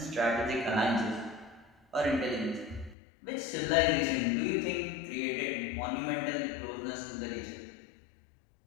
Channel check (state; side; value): drops out; right; at 3.0 s